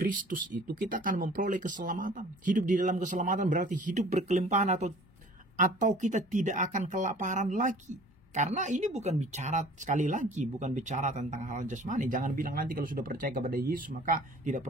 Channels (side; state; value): both; normal; correlation 0.49